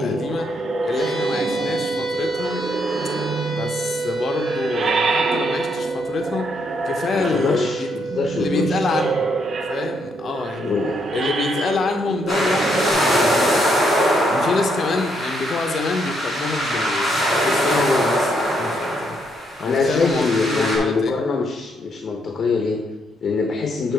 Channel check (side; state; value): both; normal; correlation 0.75